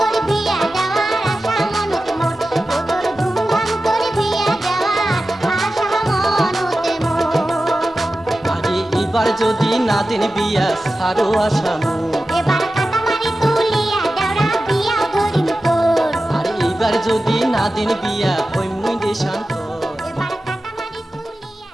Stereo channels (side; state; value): both; normal; correlation 0.94